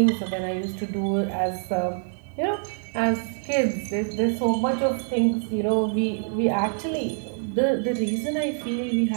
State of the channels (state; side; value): silent; left; 62 dB below the other